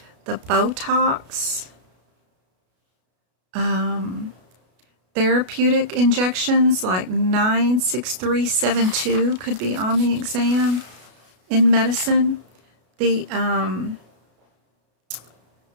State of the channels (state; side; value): late; left; 33 ms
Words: the Botox, therapeutic injections like 96372 could be on the exam in medicine. The